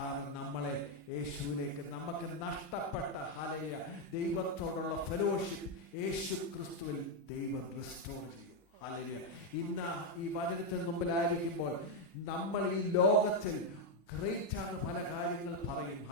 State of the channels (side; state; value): both; normal; correlation 0.03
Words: നമ്മളെ യേശുവിലേക്ക്, നമുക്ക് നഷ്ടപ്പെട്ട ഹല്ലേലൂയ ദൈവത്തോടുള്ള ഫെലോഷിപ്പ് യേശു ക്രിസ്തുവിൽ ദൈവം റിസ്റ്റോർ ചെയ്യും. ഹല്ലേലൂയ. ഇന്ന് ഈ വചനത്തിന് മുമ്പിലായിരിക്കുമ്പോൾ നമ്മൾ ഈ ലോകത്തിൽ ഗ്രേറ്റ് ആണ് പല കാര്യങ്ങൾ പറയും.